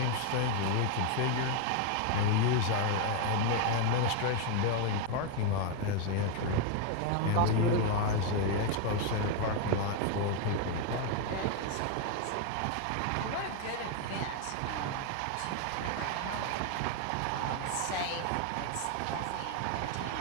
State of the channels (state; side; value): different; both; correlation 0.01